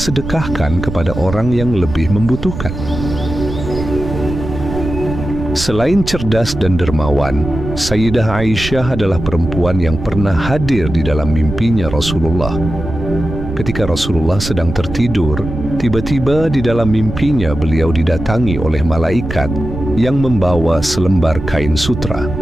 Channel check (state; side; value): noise; right; rumble, 7 dB below the sound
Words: sedekahkan kepada orang yang lebih membutuhkan. Selain cerdas dan dermawan, Sayyidah Aisyah adalah perempuan yang pernah hadir di dalam mimpinya Rasulullah. Ketika Rasulullah sedang tertidur, tiba-tiba di dalam mimpinya beliau didatangi oleh malaikat yang membawa selembar kain sutra.